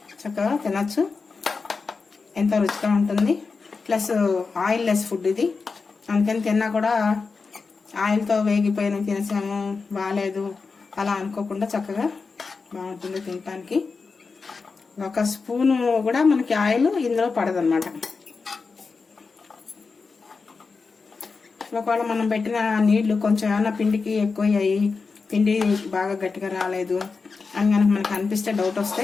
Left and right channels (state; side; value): quieter; right; 4.6 dB